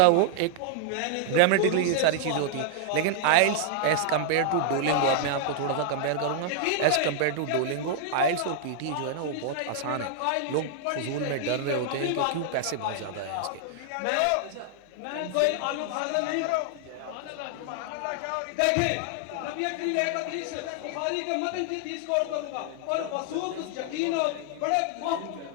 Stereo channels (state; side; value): different; both; correlation 0.00